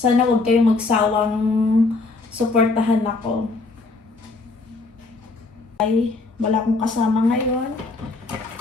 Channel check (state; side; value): quieter; right; 3.6 dB